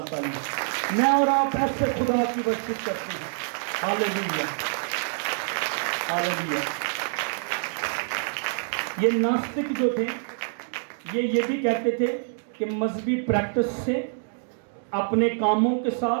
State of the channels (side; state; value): left; silent; digital silence